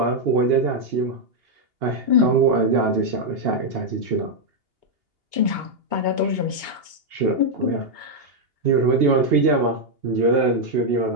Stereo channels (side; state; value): left; late; 2.8 ms